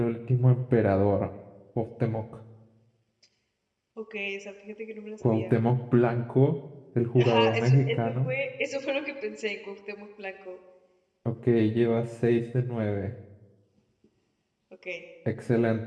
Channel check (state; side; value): identical; both; correlation 1.00